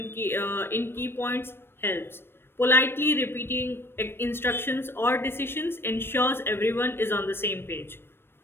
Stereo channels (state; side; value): late; right; 0.11 ms